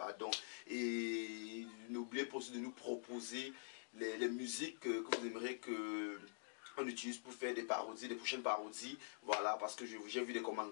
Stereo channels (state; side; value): silent; right; digital silence